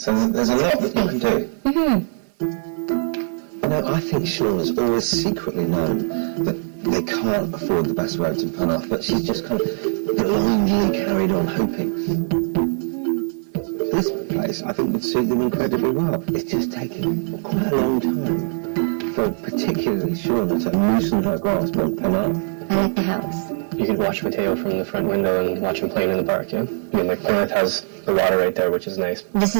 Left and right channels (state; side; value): silent; left; 65 dB below the other